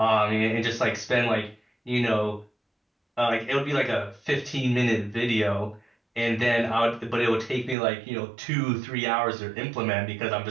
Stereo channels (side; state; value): left; drops out; at 7.8 s